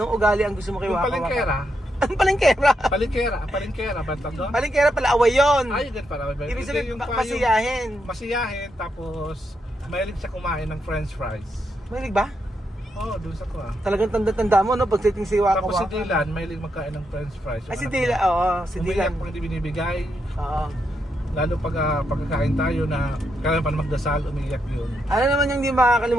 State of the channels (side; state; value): both; normal; correlation 0.81